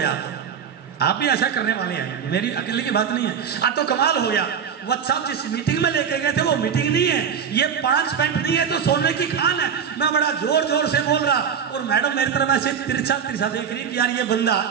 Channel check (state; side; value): quieter; left; 7.4 dB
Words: आप भी ऐसा करने वाले हैं, मेरी अकेले की बात नहीं है। तो कमाल हो गया, वत्सा जिस मीटिंग में लेके गए थे वो मीटिंग नहीं है, ये 5 पेंट नहीं है तो सोने की खान है। मैं बड़ा जोर जोर से बोल रहा और मैडम मेरी तरफ ऐसे तिरछा तिरछा देख रही कि यार ये बंदा